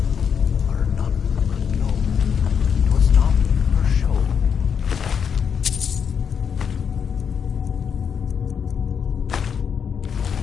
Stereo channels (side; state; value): right; quieter; 7.1 dB